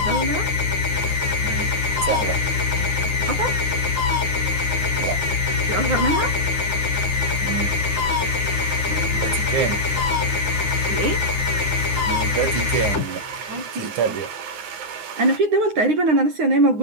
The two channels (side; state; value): left; late; 9.7 ms